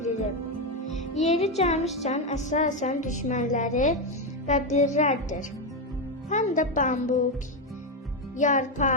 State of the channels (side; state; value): both; normal; correlation 0.07